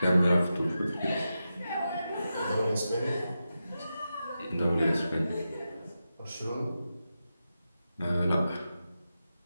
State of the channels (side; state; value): both; inverted; correlation -0.90